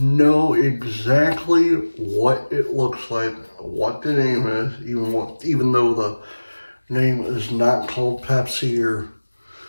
exactly what it looks like, what the name is, even though the name is not called Pepsi or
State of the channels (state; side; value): inverted; both; correlation -1.00